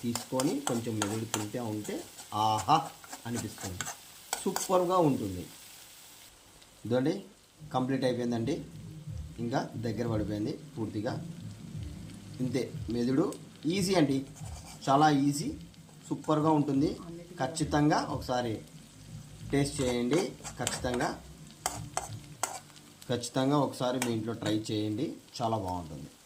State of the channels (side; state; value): both; identical; correlation 1.00